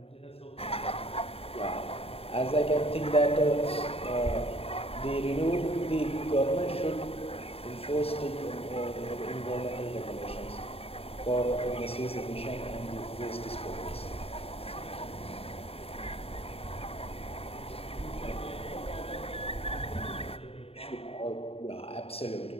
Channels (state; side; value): late; right; 0.28 ms